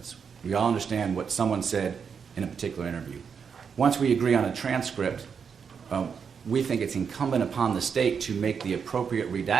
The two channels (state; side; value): quieter; left; 6.5 dB